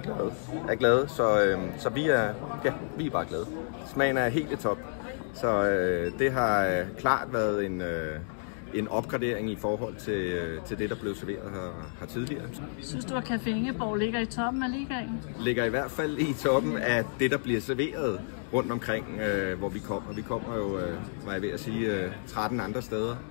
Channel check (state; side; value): silent; right; digital silence